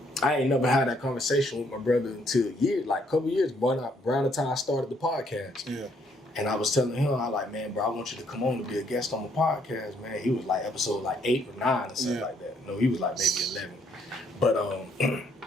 I ain't never had that conversation with my brother until a couple years, around the time I started the podcast. Yeah. And I was telling him, I like, man, bro, I want you to come on to be a guest on the podcast, man. He was like episode 8 or 9 or something like that. No, he was like maybe 11. But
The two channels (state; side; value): normal; both; correlation 0.69